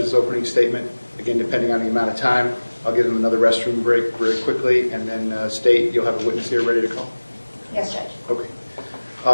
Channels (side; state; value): both; inverted; correlation -1.00